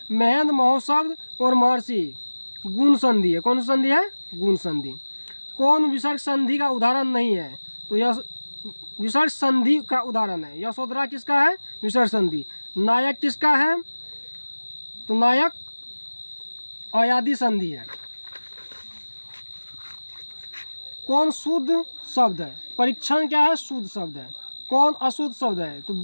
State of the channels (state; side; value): inverted; both; correlation -1.00